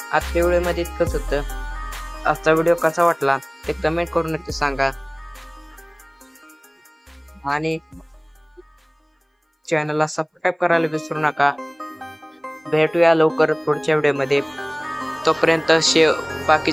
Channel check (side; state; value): both; identical; correlation 1.00